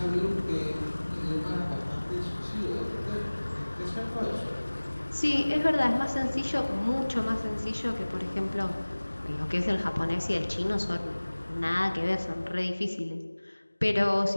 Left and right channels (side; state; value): both; inverted; correlation -1.00